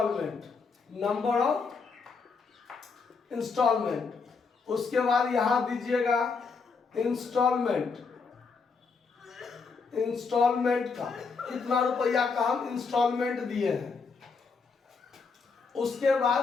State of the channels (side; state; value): right; quieter; 4.9 dB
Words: इंस्टॉलमेंट, उसके बाद यहां दीजिएगा इंस्टॉलमेंट का कितना रुपया का हम इंस्टॉलमेंट दिए हैं। उसके बाद